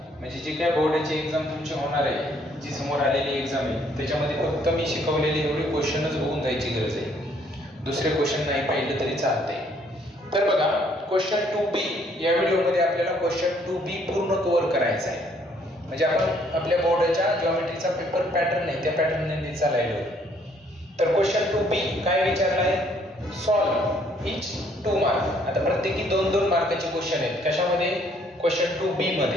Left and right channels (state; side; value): normal; both; correlation 0.65